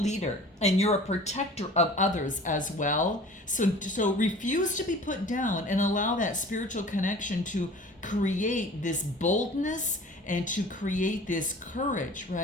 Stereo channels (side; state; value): both; normal; correlation 0.44